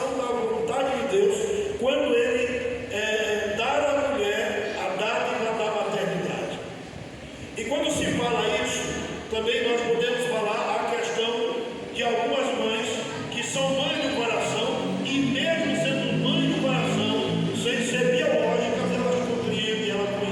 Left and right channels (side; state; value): both; identical; correlation 1.00